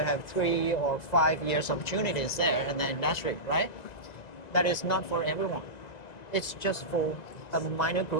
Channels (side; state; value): right; late; 1.9 ms